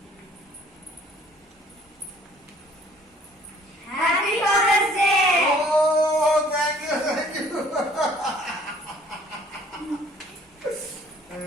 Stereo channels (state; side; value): normal; both; correlation 0.56